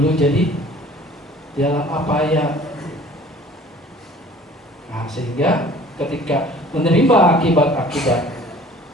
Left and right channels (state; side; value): normal; both; correlation 0.50